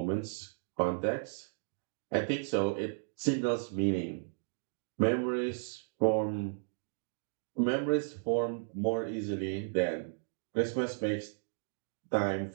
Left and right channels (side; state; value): left; silent; digital silence